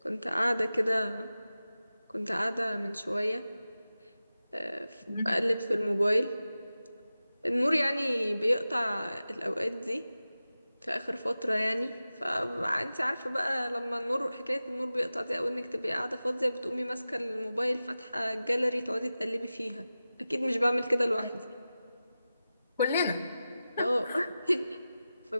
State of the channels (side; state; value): both; inverted; correlation -0.94